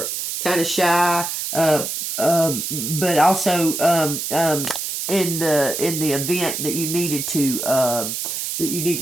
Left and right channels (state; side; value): noise; right; hiss, 4 dB below the sound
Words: kind of shy, but also in the event that you needed to that you need